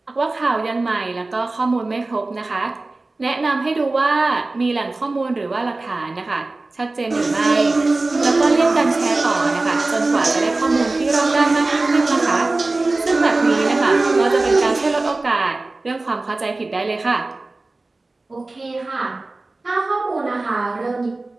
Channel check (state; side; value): quieter; left; 3.2 dB